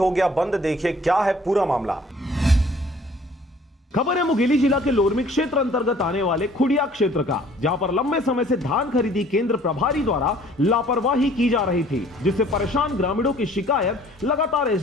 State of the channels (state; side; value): normal; both; correlation 0.55